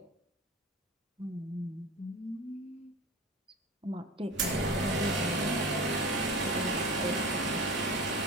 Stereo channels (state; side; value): normal; both; correlation 0.32